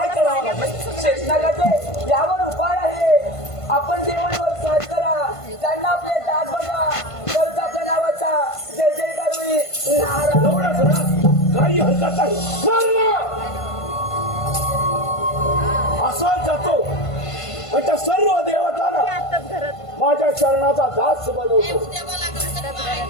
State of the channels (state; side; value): late; right; 1.5 ms